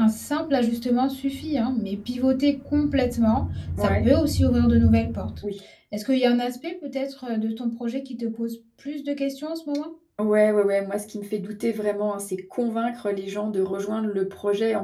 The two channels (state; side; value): identical; both; correlation 1.00